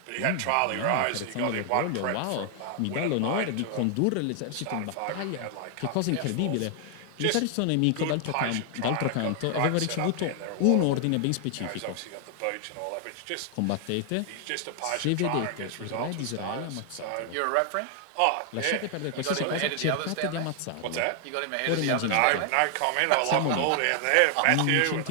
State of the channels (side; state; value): both; different; correlation 0.00